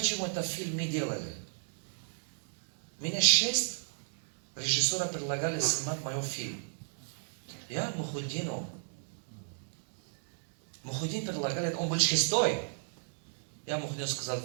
этот фильм не делали? Меня 6 режиссеров предлагали снимать мой фильм. Я Мухуддину. Мухуддин предлагали, он был 6-й. Я Мухуддину сказал,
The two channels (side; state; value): left; silent; digital silence